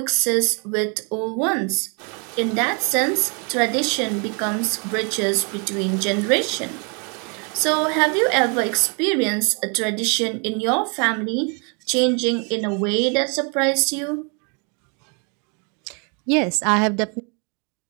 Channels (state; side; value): quieter; left; 35.9 dB